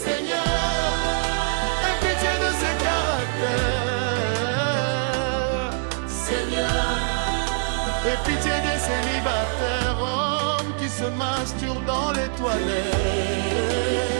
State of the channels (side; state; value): left; silent; digital silence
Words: aie pitié de ces caractères. Seigneur, aie pitié des célibataires, hommes qui se masturbent dans les toilettes.